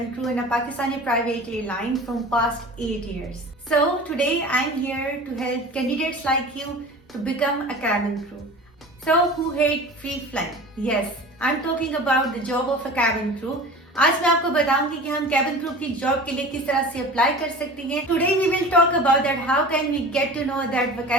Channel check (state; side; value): normal; both; correlation 0.37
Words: crew in a Pakistani private airline from past 8 years. So today I'm here to help candidates like you to become a cabin crew. So who hate free flying? Yes, I'm talking about the job of a cabin crew. आज मैं आपको बताऊंगी कि हम cabin crew की job के लिए किस तरह से अप्लाई कर सकते हैं. Today we will talk about that how can we get to know that